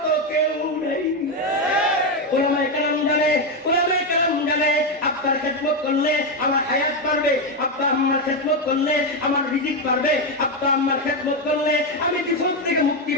কেউ নেই ওলামায়ে কেরাম জানে আব্বার খেদমত করলে আমার হায়াত বাড়বে আব্বা আম্মার খেদমত করলে আমার রিজিক বাড়বে আব্বা আম্মার খেদমত করলে আমি বিপদ থেকে মুক্তি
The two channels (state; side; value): normal; both; correlation 0.07